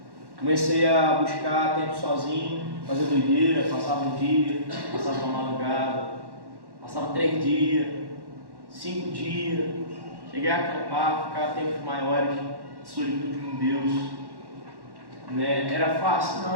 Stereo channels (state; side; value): late; left; 1.1 ms